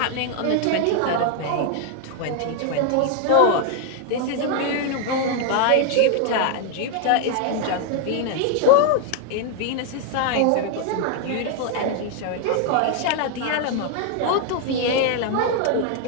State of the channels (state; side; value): different; both; correlation 0.00